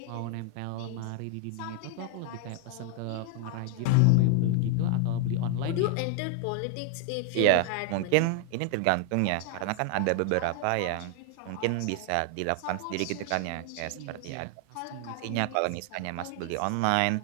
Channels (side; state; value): both; different; correlation 0.00